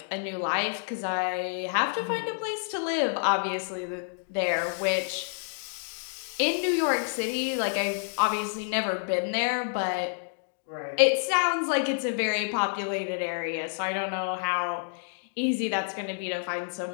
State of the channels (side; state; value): right; silent; digital silence